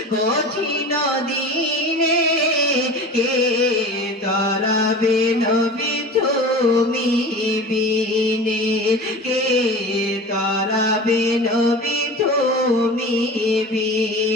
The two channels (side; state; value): both; normal; correlation 0.35